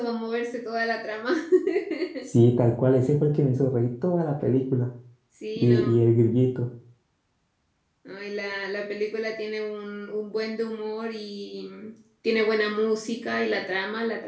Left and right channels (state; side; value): identical; both; correlation 1.00